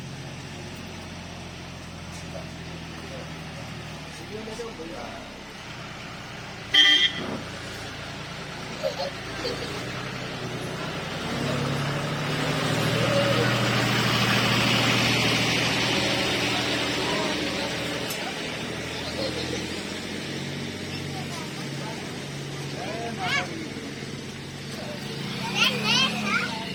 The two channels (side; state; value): both; identical; correlation 1.00